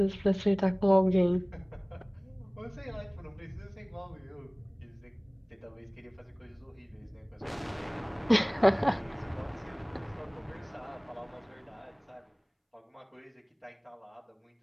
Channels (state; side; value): identical; both; correlation 1.00